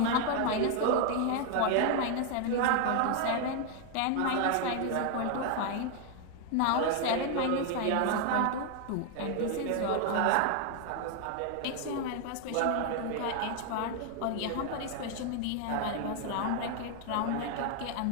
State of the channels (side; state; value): both; different; correlation 0.00